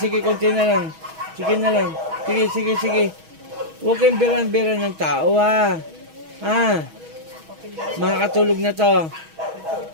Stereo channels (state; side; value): late; left; 6.2 ms